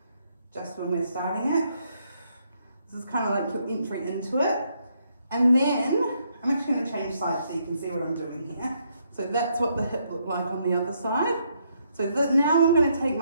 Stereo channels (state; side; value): inverted; both; correlation -0.74